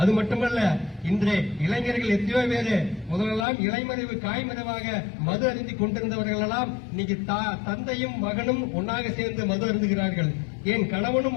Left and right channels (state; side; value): drops out; right; at 3.5 s